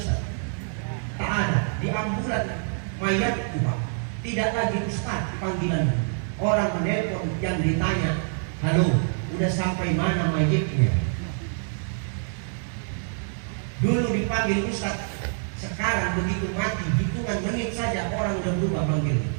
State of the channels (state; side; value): silent; left; 61 dB below the other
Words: Tak ada, di ambulan mayatku Pak, tidak lagi Ustaz panggilan. Orang menelpon yang ditanya, halo, udah sampai mana mayatnya? Dulu dipanggil Ustaz, sekarang begitu mati, hitungan menit saja orang udah berubah panggil.